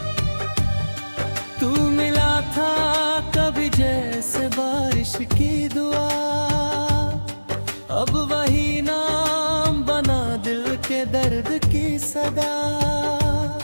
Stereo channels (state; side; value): inverted; both; correlation -1.00